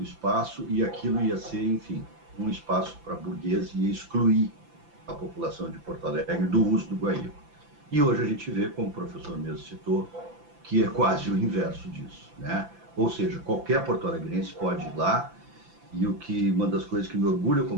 espaço, e aquilo ia ser, enfim, um espaço para burguês e ia excluir a população de Porto Alegre do uso do Guaíba. E hoje a gente vê, como o professor mesmo citou, que é quase o inverso disso, né? Ou seja, qualquer porto-alegrense pode ir lá, e uma das coisas que me orgulha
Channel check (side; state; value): left; late; 5.9 ms